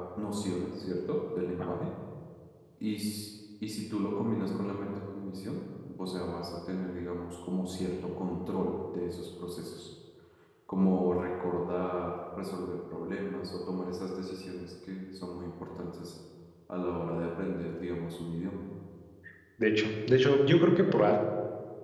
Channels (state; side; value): identical; both; correlation 1.00